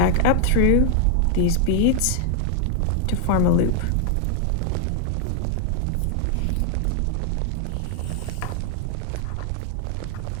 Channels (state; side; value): different; both; correlation 0.00